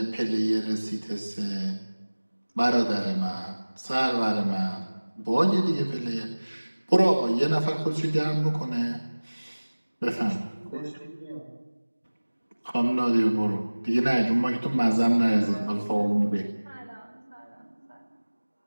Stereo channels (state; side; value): inverted; both; correlation -1.00